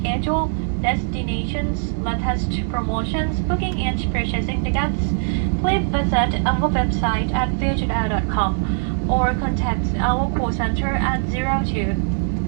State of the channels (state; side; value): silent; left; 65 dB below the other